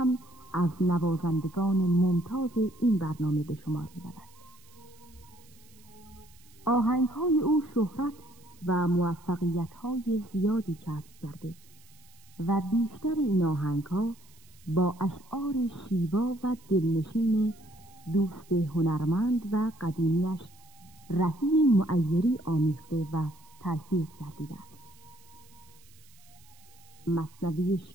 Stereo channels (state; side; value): noise; right; hiss, 27 dB below the sound